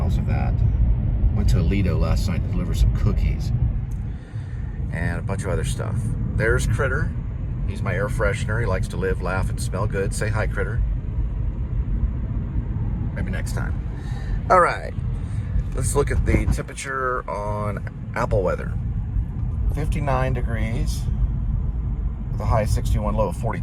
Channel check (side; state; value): both; identical; correlation 1.00